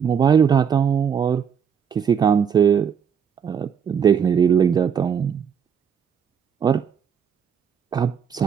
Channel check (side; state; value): left; quieter; 7.5 dB